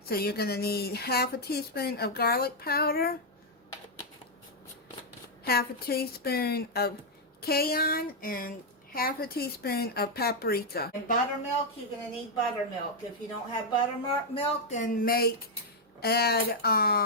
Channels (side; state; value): both; normal; correlation -0.02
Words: So you're going to need 1/2 teaspoon of garlic powder, 1/2 teaspoon of cayenne, and 1/2 teaspoon of paprika. And buttermilk, you're going to need buttermilk. If you don't have buttermilk, then add